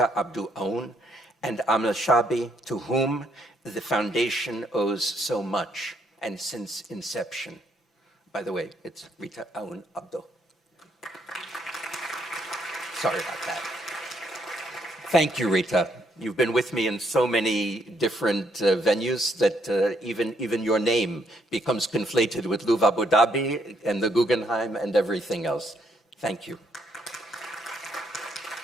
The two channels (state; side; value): normal; both; correlation 0.72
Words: Abdul Aoun and Amal Shabi, to whom the foundation owes so much, and since inception. By the way, it's Rita Aoun Abdul. Sorry about that. Thank you, Rita. You've been with me in so many different venues that even your name becomes conflated with Louvre Abu Dhabi and the Guggenheim and everything else. Thank you.